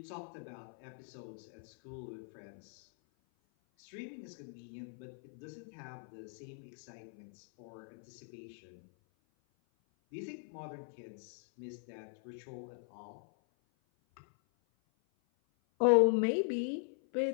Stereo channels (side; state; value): right; silent; 51 dB below the other